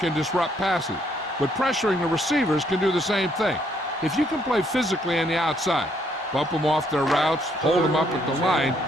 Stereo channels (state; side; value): normal; both; correlation 0.70